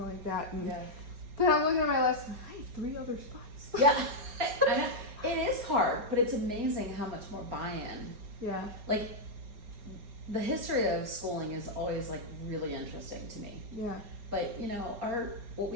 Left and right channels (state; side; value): late; left; 4.8 ms